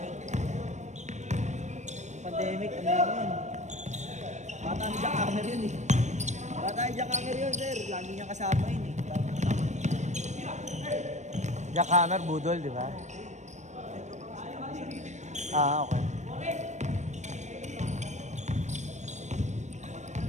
yun. Pandemic, ano yun? Bata ni Jack Hammer yun eh. Bata ni Jack Hammer yun, sir. Lagi niya kasama yun eh. Jack Hammer, budol, di ba? Ah, okay.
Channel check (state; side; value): late; left; 0.34 ms